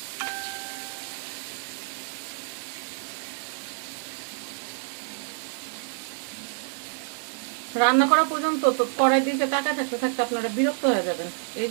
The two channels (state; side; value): silent; left; 59 dB below the other